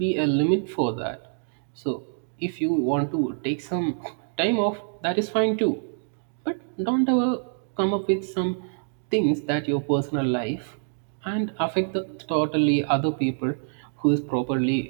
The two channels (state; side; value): silent; left; 59 dB below the other